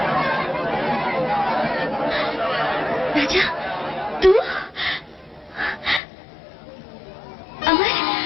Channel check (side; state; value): right; drops out; at 6.0 s